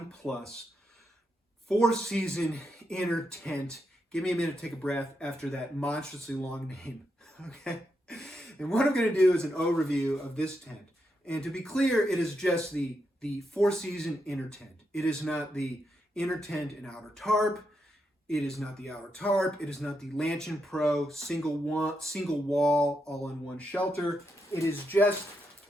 Plus 4-season inner tent. Give me a minute to take a breath after that monstrously long name, okay? And what I'm going to do is an overview of this tent. And to be clear, it is just the 4-season inner tent. It is not the inner tent and outer tarp. It is not the outer tarp. It is not the Lanshan Pro single wall all-in-one shelter. It is just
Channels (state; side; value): normal; both; correlation 0.83